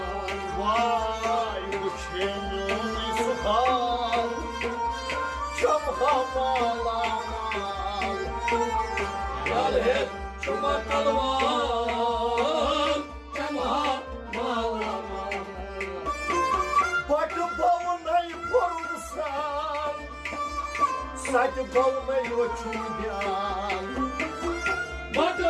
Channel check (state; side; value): identical; both; correlation 1.00